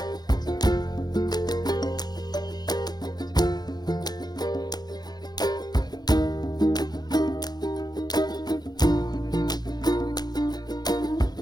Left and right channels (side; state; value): right; late; 0.20 ms